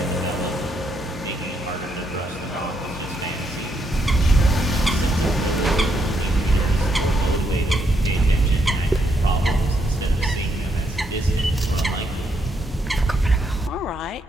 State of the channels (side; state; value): both; normal; correlation 0.76